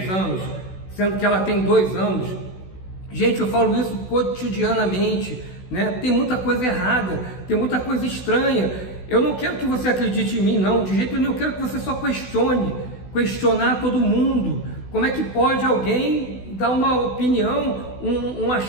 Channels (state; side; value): late; right; 16 ms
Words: anos, sendo que ela tem 2 anos. Gente, eu falo isso cotidianamente, né? Tem muita coisa errada, tem muita coisa estranha. Eu não quero que você acredite em mim, não, de jeito nenhum. Eu quero que você só questionar todo mundo. Como é que pode alguém dar uma opinião, um